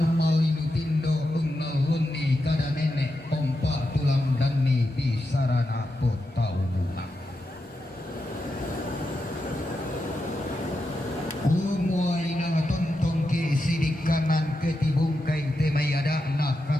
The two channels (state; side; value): normal; both; correlation 0.87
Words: malinu tindo ungaluni kada nenek pompa tulang dani di sarana potau bunga umuai nang tontong ke sidik kanan ketibung kain temai ada nak